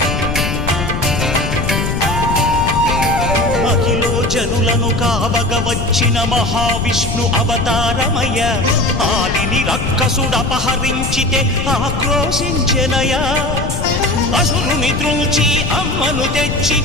మహిలో జనులను కావగ వచ్చిన మహావిష్ణు అవతారమయ్య ఆలిని రక్కసుడపహరించితే ఆక్రోశించెనయా అసురుని త్రుంచి అమ్మను తెచ్చి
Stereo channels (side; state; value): left; noise; rumble, 3 dB below the sound